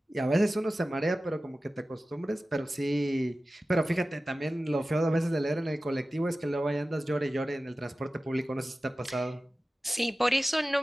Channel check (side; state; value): both; normal; correlation 0.95